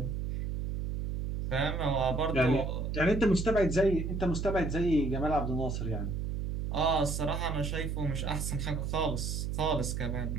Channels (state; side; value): noise; right; hum, 2 dB below the sound